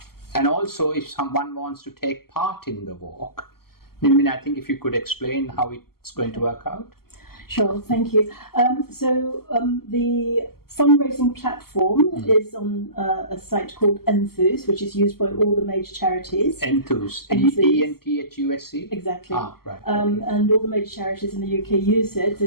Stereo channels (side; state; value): right; late; 0.94 ms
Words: also, if someone wants to take part in the walk, I think if you could explain how it's going to work out. Sure, thank you. The fundraising platform is on a site called Enthuse, which is used by all the major charities. Enthuse, ENTHUSE? Exactly. Right. And all the major charities in the UK use it.